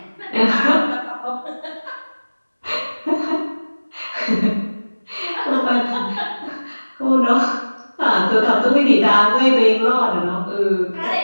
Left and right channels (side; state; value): both; inverted; correlation -1.00